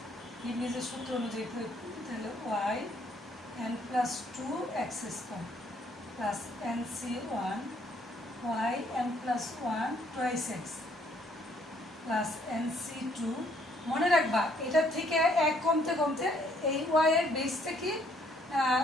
লিবনিজের সূত্র অনুযায়ী প্রয়োগ করি তাহলে y n plus 2 x square plus nc1 y n plus one twice x plus NC2। মনে রাখবা এটার থেকে এক কমতে কমতে এই ওয়াই এর বেস থেকে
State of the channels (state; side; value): normal; both; correlation 0.66